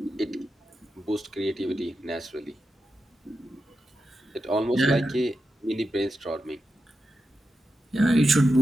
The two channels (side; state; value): both; normal; correlation 0.89